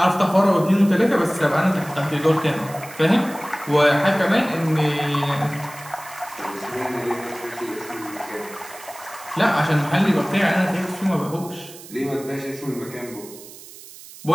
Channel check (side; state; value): right; noise; hiss, 17 dB below the sound